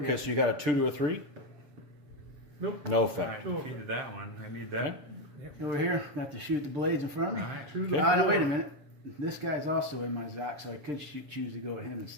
so you got a 2 to a 3. Nope. No I effect. defeated that one. I need that. Over here, got to shoot the blades in front of me. To the Oh, no, wait a floor. minute. This guy's also in my Zoc, so I could choose to go with him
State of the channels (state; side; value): late; left; 6.8 ms